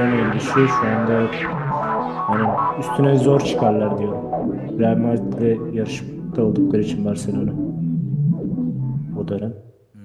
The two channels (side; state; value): both; identical; correlation 1.00